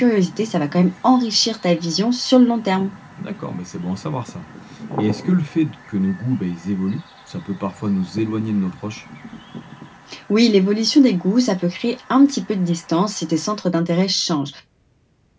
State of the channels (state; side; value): identical; both; correlation 1.00